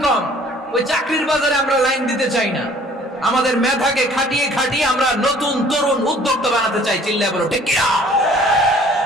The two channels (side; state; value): both; normal; correlation 0.54